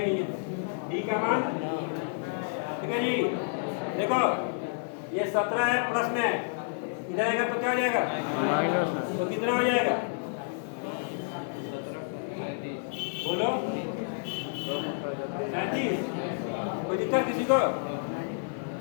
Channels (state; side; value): silent; right; 58 dB below the other